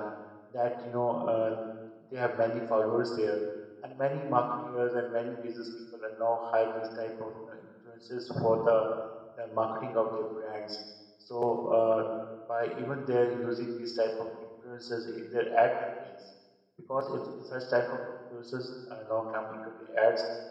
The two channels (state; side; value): identical; both; correlation 1.00